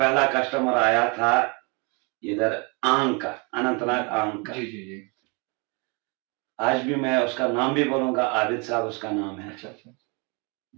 कस्टमर आया था इधर आंग का, अनंतनाग आंग का। जी जी जी। आज भी मैं उसका नाम भी बोलूंगा, आबिद साहब उसका नाम है। अच्छा अच्छा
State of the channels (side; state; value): left; quieter; 31.9 dB